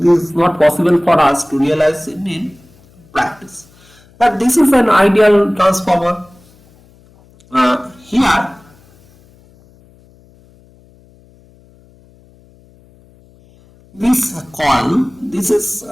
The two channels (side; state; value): left; noise; hum, 29 dB below the sound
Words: is not possible for us to realize in practice. But this is an ideal transformer. Here this coil, this is